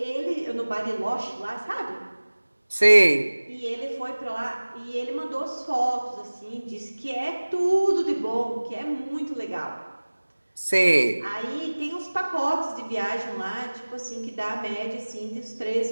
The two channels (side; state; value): both; inverted; correlation -1.00